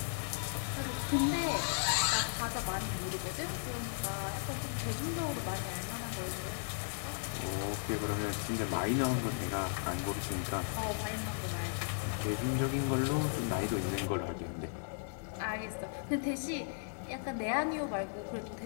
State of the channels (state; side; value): silent; right; digital silence